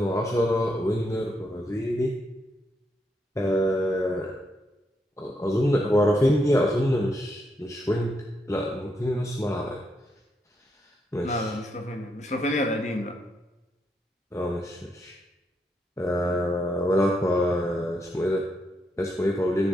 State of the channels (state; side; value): normal; both; correlation 0.79